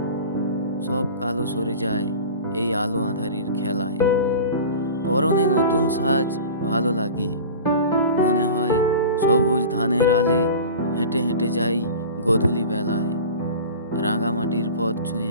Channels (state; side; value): inverted; both; correlation -0.36